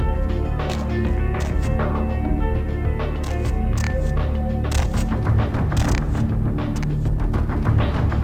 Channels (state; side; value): identical; both; correlation 1.00